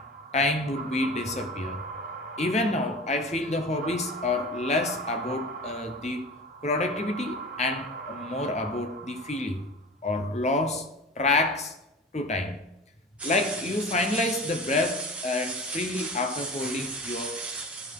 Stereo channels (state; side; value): normal; both; correlation 0.35